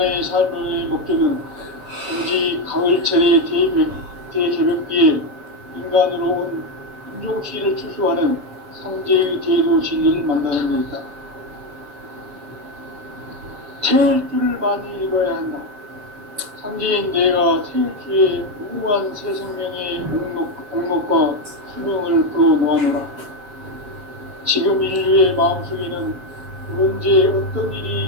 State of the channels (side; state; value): left; late; 7.2 ms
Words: 삶의 목적은 단지 가을철의 대개벽기에 인간으로 온 인종시를 추수하는 상제의 대도 진리를 만나는 것이다. 태일 줄을 많이 읽어야 한다. 상제인 내가 태일주의 무궁한 새 생명의 목록과 수명을 풀어놓아노라. 지금 인류의 마음속에는 언제 어떤